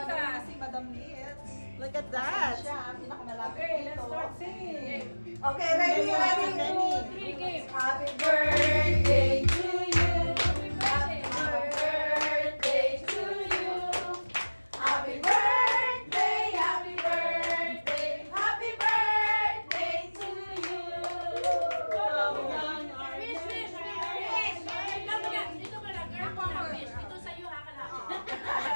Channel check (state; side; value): inverted; both; correlation -1.00